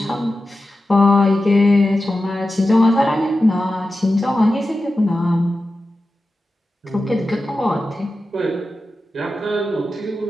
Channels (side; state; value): both; normal; correlation 0.93